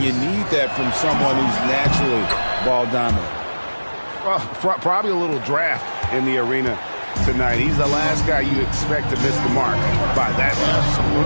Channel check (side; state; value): both; inverted; correlation -1.00